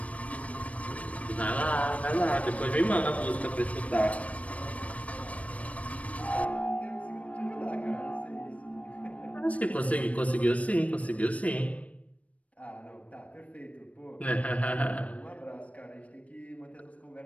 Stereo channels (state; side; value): late; right; 0.066 ms